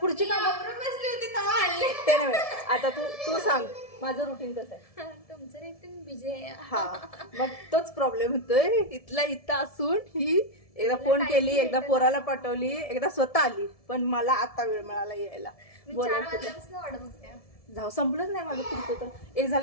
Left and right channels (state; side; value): late; right; 1.7 ms